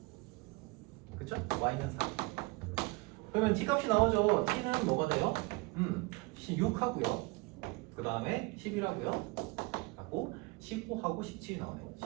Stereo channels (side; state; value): left; quieter; 25.1 dB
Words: 그쵸? y는 4. 그러면 t값이 나오죠. t는 뭐가 돼요? 6하고요. 그 다음에 11하고요. 하고 15하고 17이 나오네요.